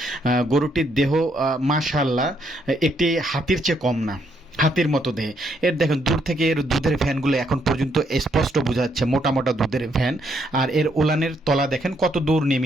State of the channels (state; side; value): normal; both; correlation 0.73